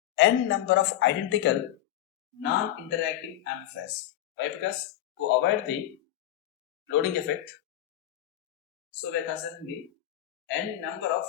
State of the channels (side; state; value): right; quieter; 13.1 dB